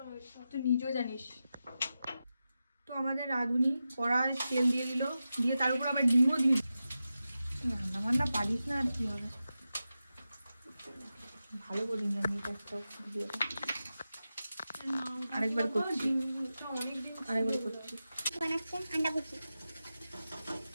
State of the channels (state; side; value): inverted; both; correlation -0.92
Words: তুই নিজেও জানিস। তো আমাদের রাঁধুনি কড়ায় তেল দিয়ে দিল, দিয়ে তার উপর আবার ডিমও দিয়ে দিল। রান্না বান্না পারিস না, আর কি হবে? ভালো করিনি আমি এটা, একটা ভিডিওটা আরেকবার করছি, আরেকবার করছি। বানাচ্ছে আন্ডা ভুজি।